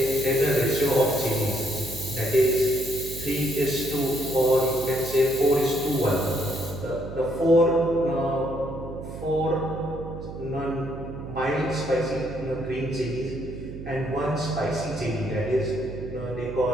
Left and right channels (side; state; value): right; noise; hum, 10 dB below the sound